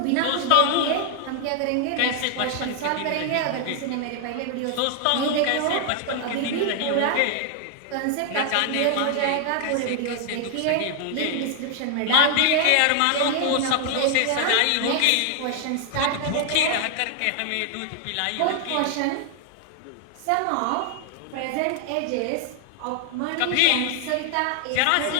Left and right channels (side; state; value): both; different; correlation 0.00